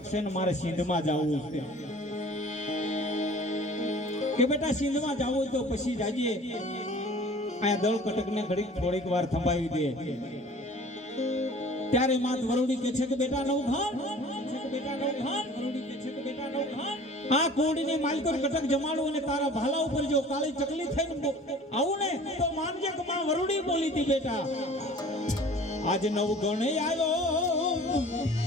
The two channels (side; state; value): both; normal; correlation 0.46